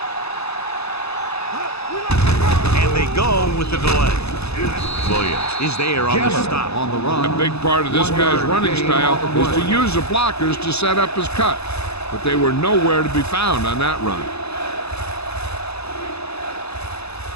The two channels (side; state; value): right; late; 0.79 ms